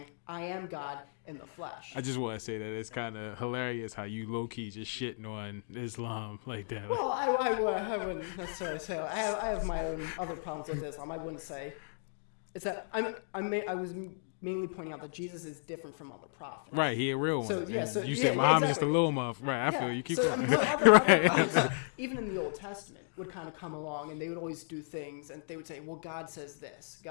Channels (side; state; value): right; silent; digital silence